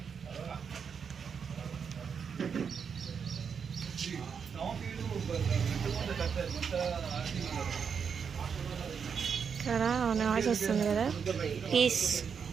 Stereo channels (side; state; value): left; quieter; 6.6 dB